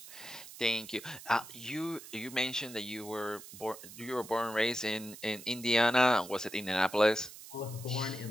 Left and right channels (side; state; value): right; noise; hiss, 15 dB below the sound